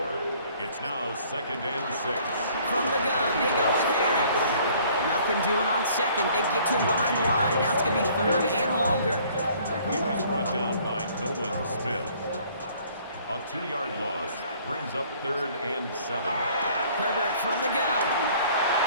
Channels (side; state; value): both; inverted; correlation -0.57